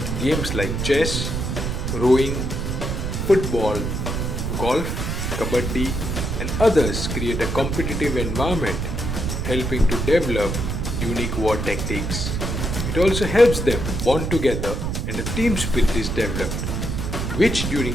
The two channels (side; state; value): right; noise; rumble, 2 dB below the sound